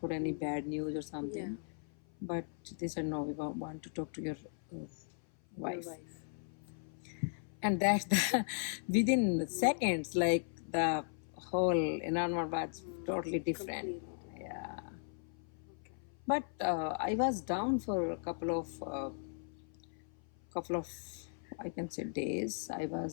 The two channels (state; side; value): silent; right; 53 dB below the other